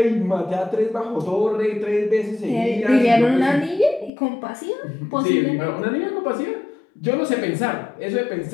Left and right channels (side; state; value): right; drops out; at 4.1 s